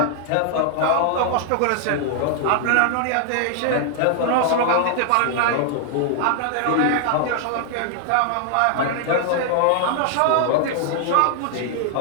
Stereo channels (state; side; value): different; both; correlation 0.00